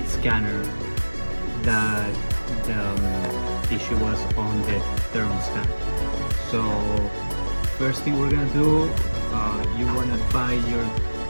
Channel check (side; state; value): both; inverted; correlation -1.00